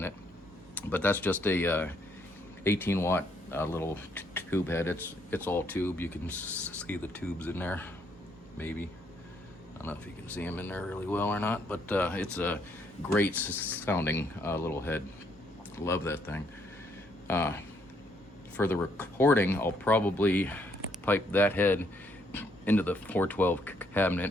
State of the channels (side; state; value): both; normal; correlation 0.70